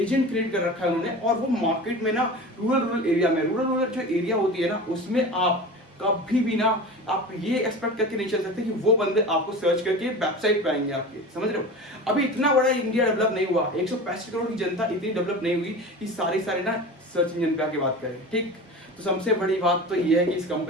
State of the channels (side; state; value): both; normal; correlation 0.32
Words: एजेंट क्रिएट कर रखा है उन्होंने, और वो मार्केट में ना रूरल एरिया में, रूरल जो एरिया होती है ना उसमें आप कभी भी ना आप ये एक्सपेक्ट करके नहीं चल सकते कि वो बंदे आपको सर्च करके वेबसाइट पे आएंगे आपके, समझ रहे हो। अभी इतना बड़ा इंडिया डेवलप नहीं हुआ, 165 करोड़ की जनता इतनी डेवलप नहीं हुई कि सारे ना सर्च इंजन पे आके बात करें, ठीक। तो सबसे बड़ी बात तो ये है कि इस